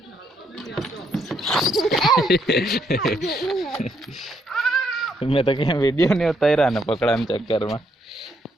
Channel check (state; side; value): normal; both; correlation 0.74